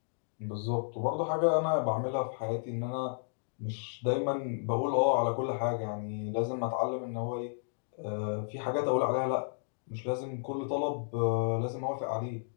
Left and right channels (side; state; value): right; silent; digital silence